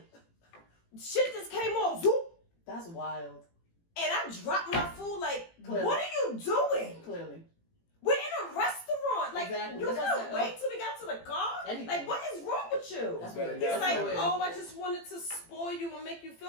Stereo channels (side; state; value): right; late; 18 ms